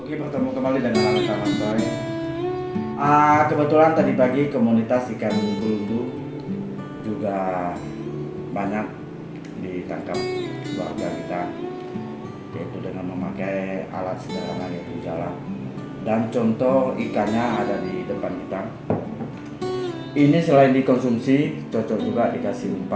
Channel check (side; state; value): both; identical; correlation 1.00